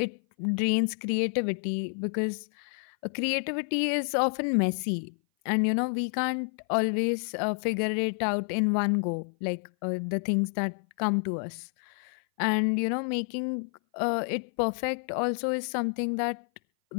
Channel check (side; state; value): right; silent; 57 dB below the other